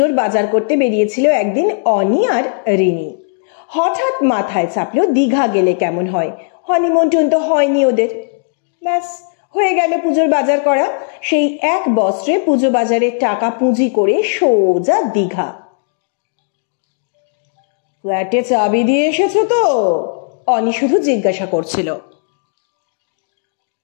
বাজার করতে বেরিয়েছিল একদিন অনি আর রিনি। হঠাৎ মাথায় চাপলো দীঘা গেলে কেমন হয়। হনিমুন তো হয়নি ওদের। ব্যাস, হয়ে গেল পুজোর বাজার করা। সেই এক বস্ত্রে পুজো বাজারের টাকা পুঁজি করে সোজা দীঘা। ফ্ল্যাটে চাবি দিয়ে এসেছো তো? অনি শুধু জিজ্ঞাসা করছিল।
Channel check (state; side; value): silent; right; 69 dB below the other